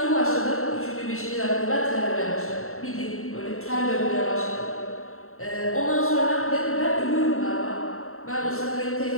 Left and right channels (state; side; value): late; right; 0.63 ms